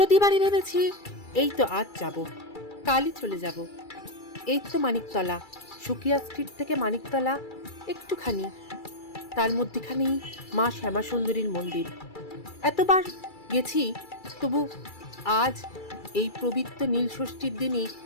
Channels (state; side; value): late; right; 2.3 ms